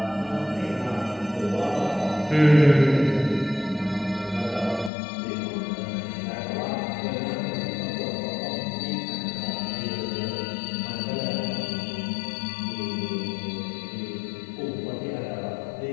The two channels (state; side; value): drops out; right; at 4.9 s